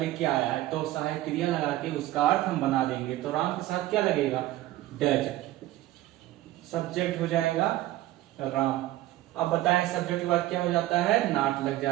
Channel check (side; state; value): left; quieter; 15.8 dB